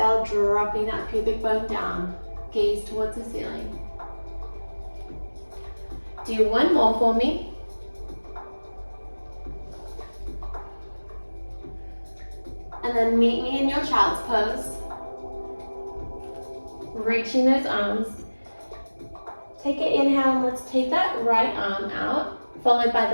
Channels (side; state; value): both; inverted; correlation -1.00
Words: dropping that pubic bone down. Gaze towards the ceiling. Do one more for me. And then meet me in your child's pose. Reaching those arms. Take an inhale, and let's take that right arm out, followed by